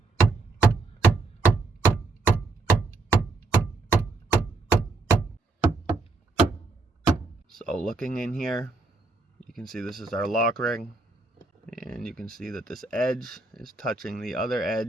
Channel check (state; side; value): quieter; left; 3.5 dB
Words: So looking in here, you can see this is our lock ring, and you can see that this edge is touching the other